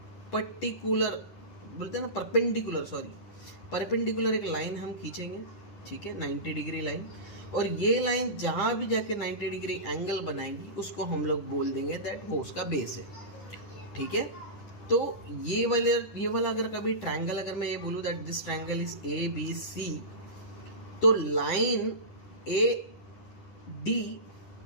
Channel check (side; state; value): right; late; 10 ms